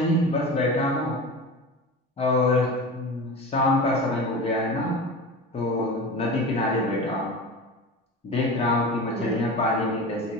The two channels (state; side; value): normal; both; correlation 0.30